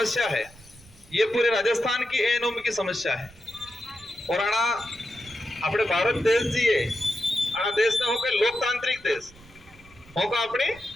है ये पूरे राजस्थान की एनोमी की समस्या है। और आना अपने भारत देश जी है, आना देश ने होकर लोकतांत्रिक देश होगा, अपने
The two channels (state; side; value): noise; right; rumble, 23 dB below the sound